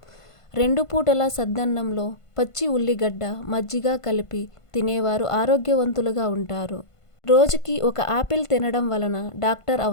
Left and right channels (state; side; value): late; right; 1.5 ms